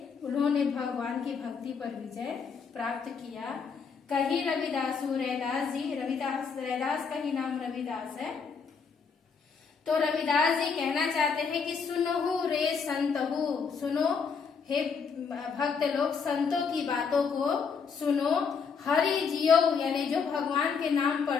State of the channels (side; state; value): right; quieter; 5.8 dB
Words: उन्होंने भगवान की भक्ति पर विजय प्राप्त किया। कही रविदासु, रैदास जी, रैदास का ही नाम रविदास है। तो रविदास जी कहना चाहते हैं कि सुनहु रे संतहु, सुनो हे भक्त लोग संतों की बातों को सुनो। हरि जियो यानी जो भगवान के नाम